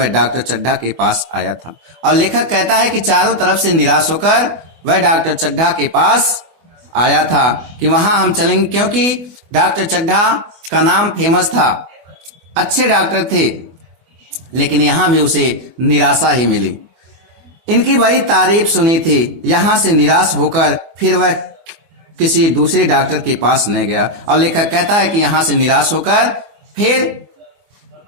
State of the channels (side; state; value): left; late; 24 ms